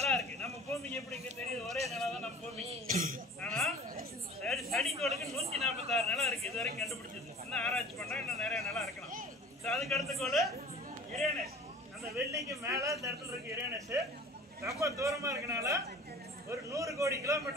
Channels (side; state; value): both; normal; correlation 0.44